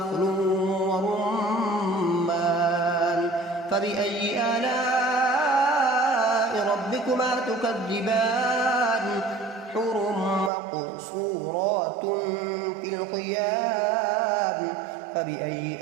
ورمان فبأي آلاء ربكما تكذبان حور مقصورات في الخيام فبأي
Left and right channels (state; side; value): drops out; left; at 10.5 s